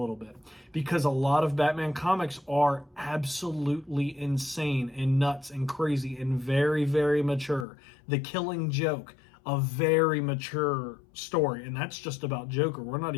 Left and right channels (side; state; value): right; drops out; at 7.7 s